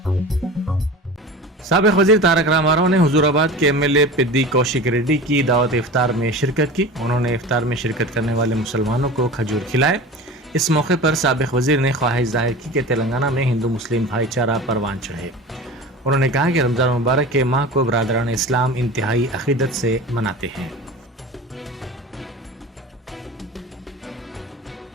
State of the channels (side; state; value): both; normal; correlation 0.35